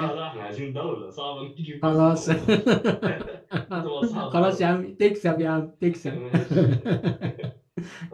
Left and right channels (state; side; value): identical; both; correlation 1.00